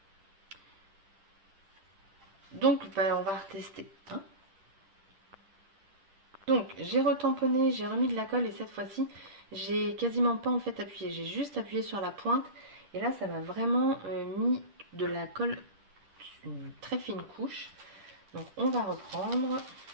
Donc, bah, on va retester. Hein. Donc, j'ai retamponné, j'ai remis de la colle et cette fois-ci, j'ai quasiment pas en fait appuyé. J'ai juste appuyé sur la pointe et là, ça m'a vraiment mis de la colle, une très fine couche. Donc, on va reprendre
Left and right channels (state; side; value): late; left; 10 ms